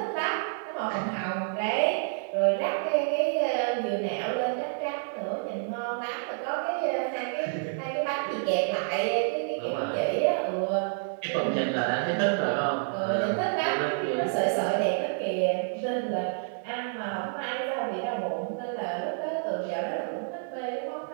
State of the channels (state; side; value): silent; left; digital silence